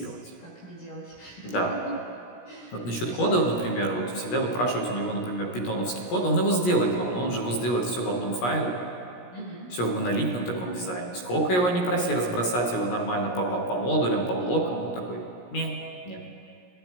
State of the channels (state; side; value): late; right; 17 ms